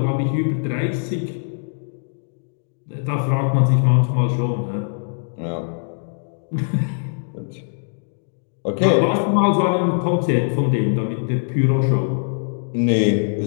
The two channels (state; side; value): silent; right; digital silence